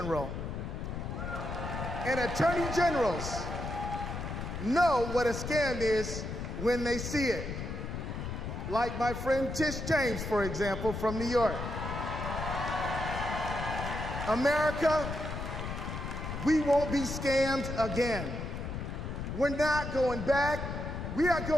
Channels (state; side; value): noise; left; rumble, 5 dB below the sound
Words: And attorney generals know what a scam is when they see it. like my friend Tish James, for example, from New York. America, we won't be scammed again. We're not going back, we are